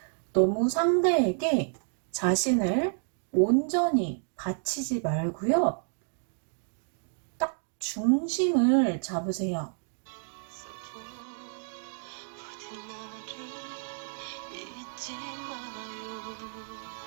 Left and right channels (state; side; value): silent; left; 58 dB below the other